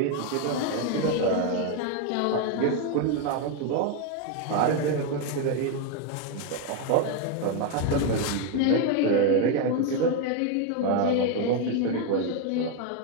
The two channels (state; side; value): different; both; correlation 0.01